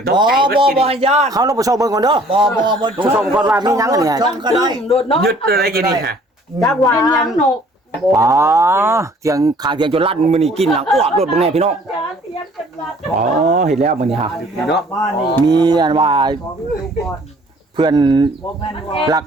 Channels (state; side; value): normal; both; correlation 0.56